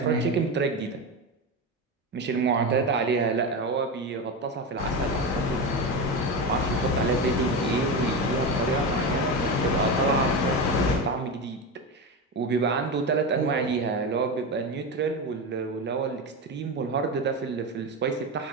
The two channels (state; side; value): normal; both; correlation 0.18